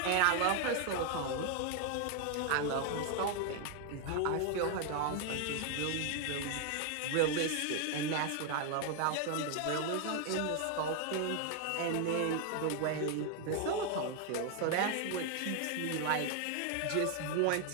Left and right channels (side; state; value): both; different; correlation 0.01